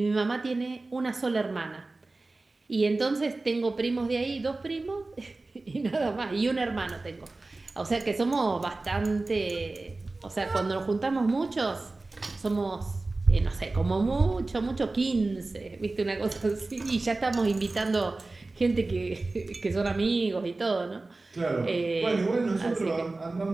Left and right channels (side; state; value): left; quieter; 3.3 dB